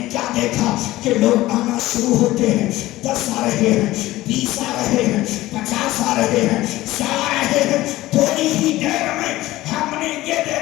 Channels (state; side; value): quieter; right; 17.1 dB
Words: لوگ آنا شروع ہوتے ہیں، 10 آ رہے ہیں، 20 آ رہے ہیں، 50 آ رہے ہیں، 100 آ رہے ہیں، تھوڑی ہی دیر میں ہم نے یہ